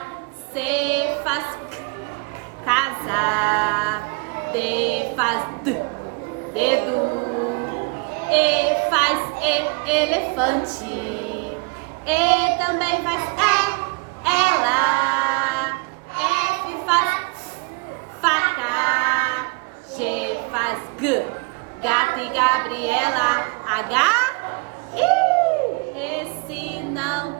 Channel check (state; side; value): quieter; left; 30.3 dB